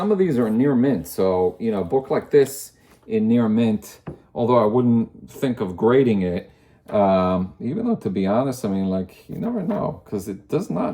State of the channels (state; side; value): identical; both; correlation 1.00